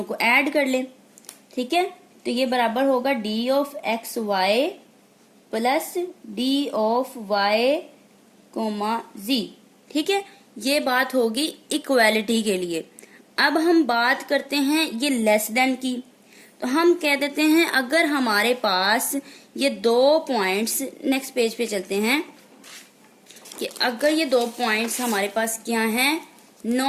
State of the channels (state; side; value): identical; both; correlation 1.00